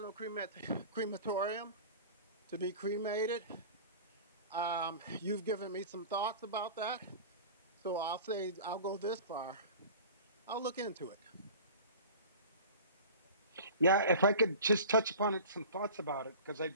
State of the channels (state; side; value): inverted; both; correlation -0.38